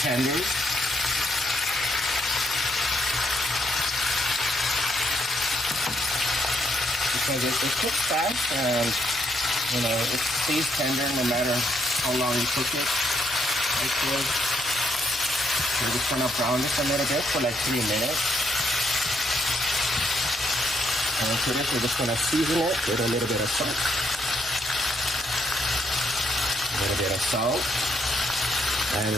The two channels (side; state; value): both; normal; correlation 0.74